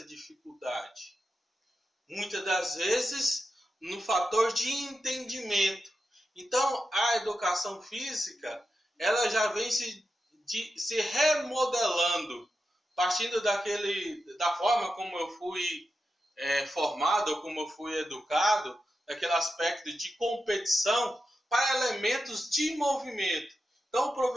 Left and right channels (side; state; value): both; normal; correlation 0.89